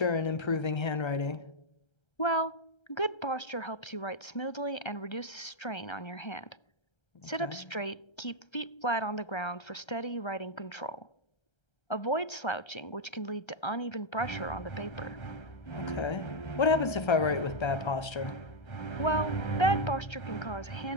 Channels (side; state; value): right; late; 1.3 ms